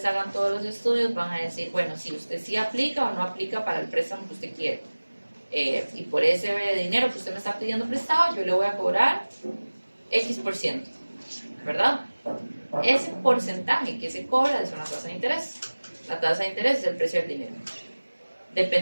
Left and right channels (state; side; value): inverted; both; correlation -1.00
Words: hagan todos los estudios, van a decir, bueno, si usted sí aplica o no aplica para el préstamo que usted quiere. Y por ese dinero que usted me está pidiendo prestado, yo le voy a cobrar X%, ¿verdad? Ese porcentaje que se cobra es una tasa de interés. La tasa de interés es el precio del dinero.